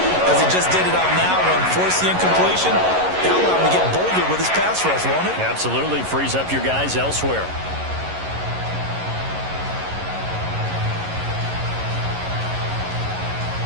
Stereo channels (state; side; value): late; left; 11 ms